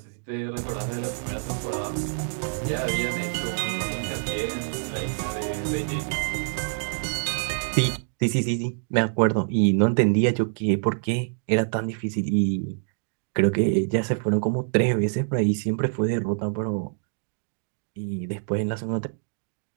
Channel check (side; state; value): left; silent; digital silence